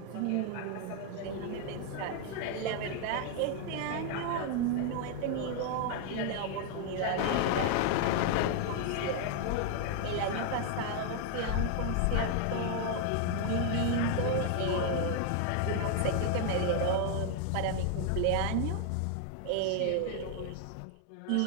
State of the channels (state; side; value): different; both; correlation 0.00